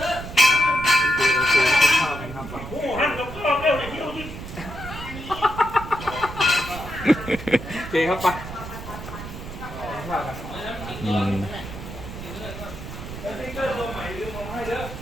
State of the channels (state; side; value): noise; right; rumble, 10 dB below the sound